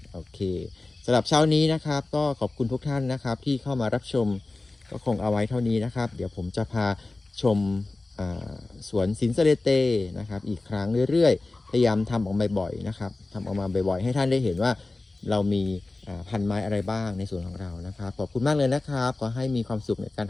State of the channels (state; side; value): quieter; right; 3.2 dB